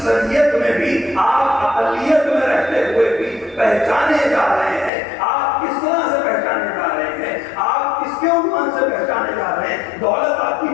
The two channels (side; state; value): right; drops out; at 4.9 s